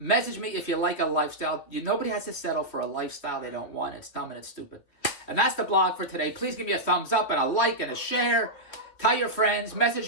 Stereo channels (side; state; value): right; late; 3.2 ms